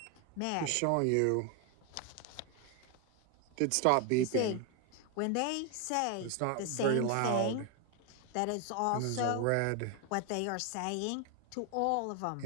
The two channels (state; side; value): different; both; correlation 0.01